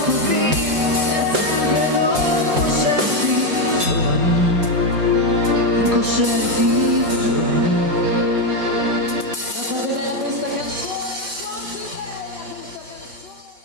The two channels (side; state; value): left; late; 5.8 ms